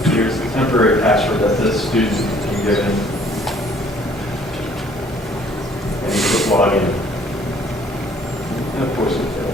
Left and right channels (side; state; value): both; normal; correlation 0.59